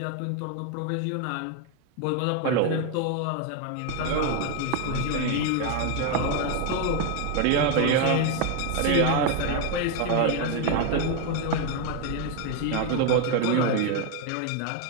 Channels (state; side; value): different; both; correlation 0.01